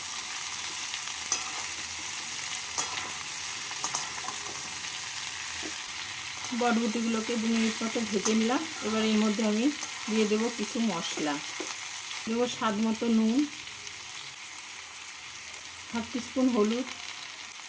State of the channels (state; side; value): identical; both; correlation 1.00